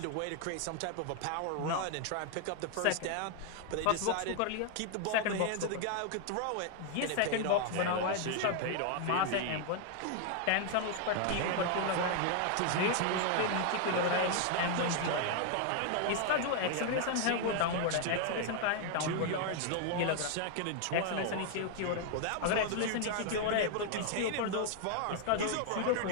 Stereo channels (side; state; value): both; different; correlation 0.00